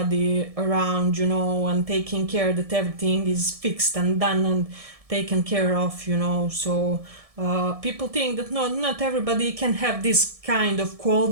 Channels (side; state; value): left; late; 1.7 ms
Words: around, and taking care that everything is fixed and done and taken care of, so people think that not everybody can have this kind of